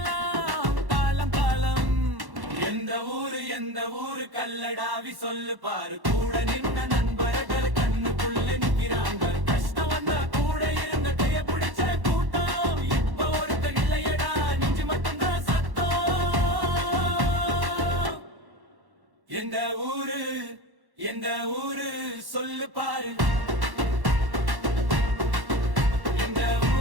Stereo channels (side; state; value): left; late; 1.1 ms